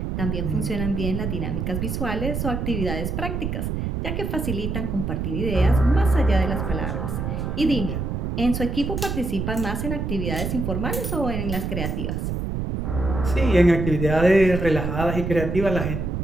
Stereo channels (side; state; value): right; noise; rumble, 2 dB below the sound